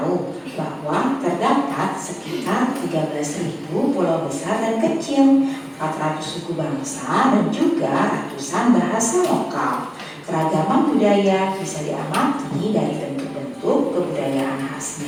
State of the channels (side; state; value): both; identical; correlation 1.00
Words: bahwa terdapat sekitar 13.000 pulau besar dan kecil, 400 suku bangsa, dan juga ratusan bahasa lokal. Keragaman budaya bisa diamati dari bentuk-bentuk kebudayaan